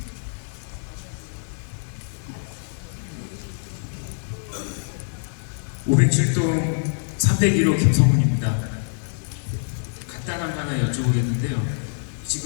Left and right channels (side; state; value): right; silent; digital silence